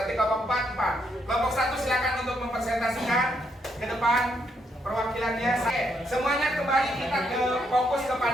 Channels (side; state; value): both; normal; correlation 0.76